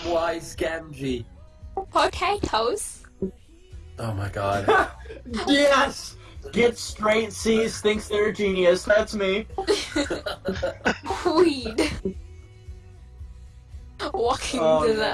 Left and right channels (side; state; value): both; identical; correlation 1.00